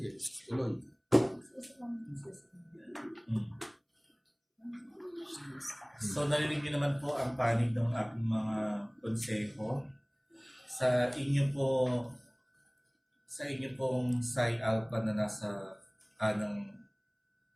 tuloy. So narinig niyo naman po ang panig ng aking mga konseho. Sa inyo pong Psi Alpha na nasa kanang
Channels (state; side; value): identical; both; correlation 1.00